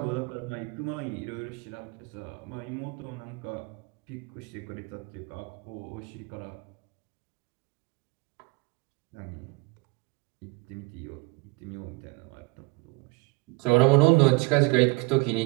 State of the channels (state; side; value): quieter; left; 27.2 dB